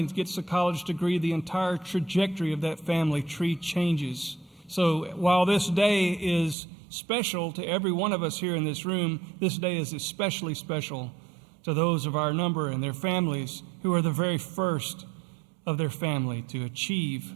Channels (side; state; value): left; drops out; at 6.6 s